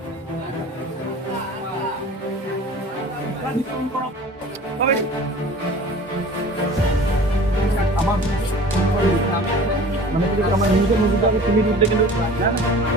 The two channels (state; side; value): normal; both; correlation 0.43